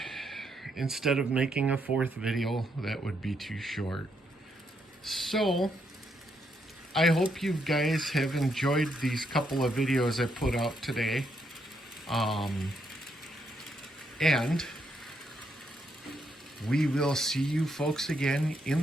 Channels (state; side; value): normal; both; correlation 0.77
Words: instead of making a fourth video, that would be too short. So I hope you guys have enjoyed these couple of videos I put out today. And we will see you folks again